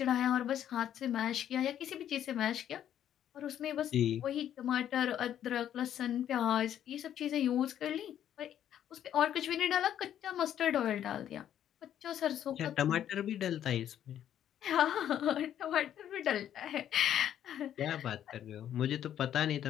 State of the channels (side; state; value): right; quieter; 10.5 dB